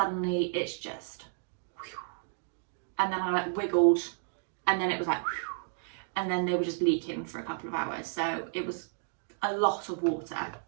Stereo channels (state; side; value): silent; left; digital silence